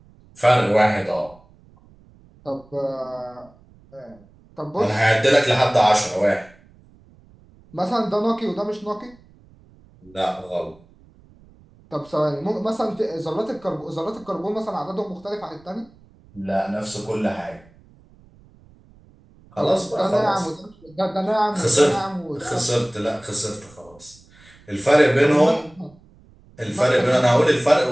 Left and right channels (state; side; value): noise; right; rumble, 27 dB below the sound